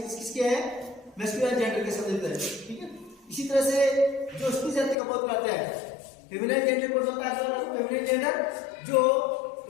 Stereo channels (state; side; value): drops out; right; at 5.0 s